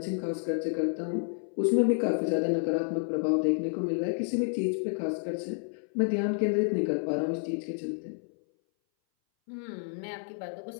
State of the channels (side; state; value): right; silent; 58 dB below the other